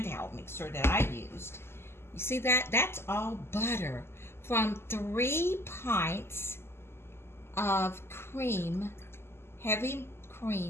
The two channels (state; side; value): late; right; 0.12 ms